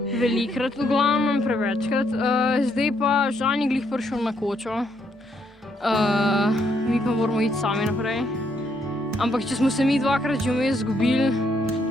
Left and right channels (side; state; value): both; normal; correlation 0.73